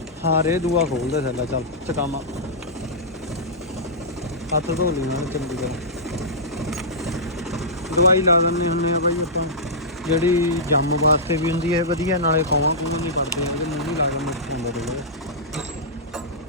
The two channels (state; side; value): normal; both; correlation -0.14